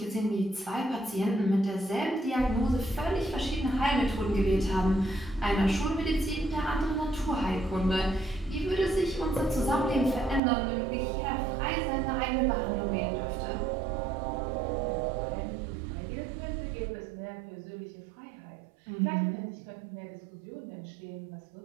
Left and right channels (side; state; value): left; drops out; at 10.4 s